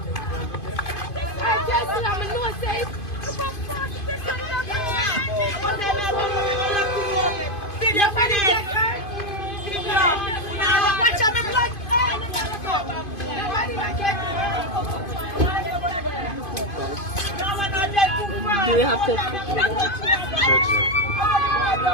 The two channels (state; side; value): late; right; 2.5 ms